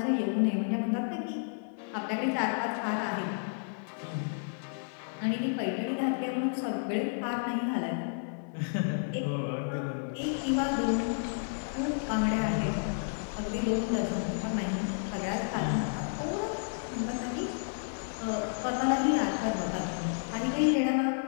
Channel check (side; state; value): right; silent; 57 dB below the other